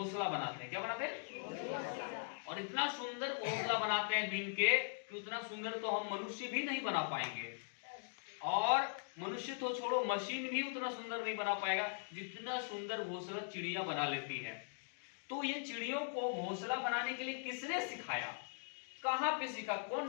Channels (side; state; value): right; silent; digital silence